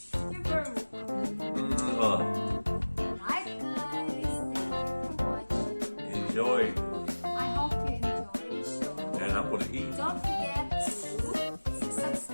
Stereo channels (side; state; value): both; inverted; correlation -1.00